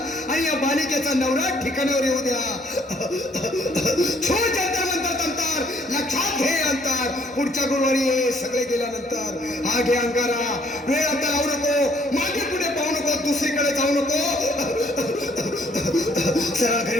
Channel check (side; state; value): both; normal; correlation 0.64